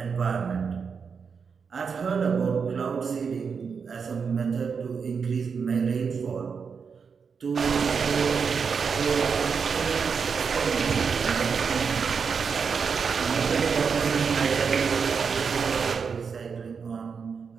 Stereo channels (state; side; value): quieter; left; 5.9 dB